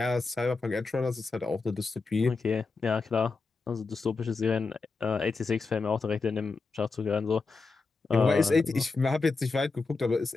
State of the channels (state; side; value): quieter; right; 4.1 dB